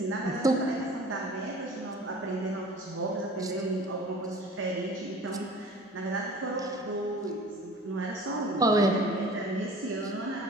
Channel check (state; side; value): normal; both; correlation 0.44